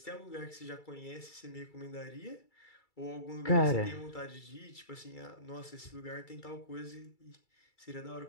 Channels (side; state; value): right; late; 2.3 ms